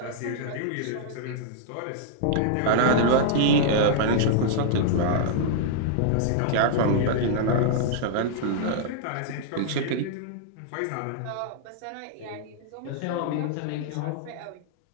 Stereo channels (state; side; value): different; both; correlation -0.01